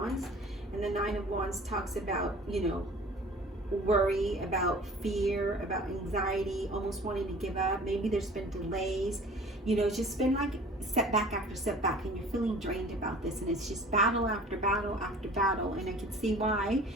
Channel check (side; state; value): both; normal; correlation 0.46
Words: and the Nine of Wands talks about, you know, worry, about fear, about anxiety, almost wanting to give up. Maybe there's been delays. You know, it's just been like setback after setback, and you're feeling drained about this, and it's just battle after battle after battle. And I can see why